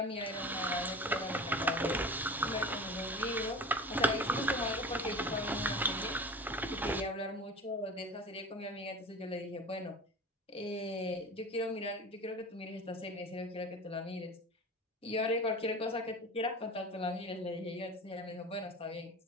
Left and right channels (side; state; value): both; normal; correlation 0.35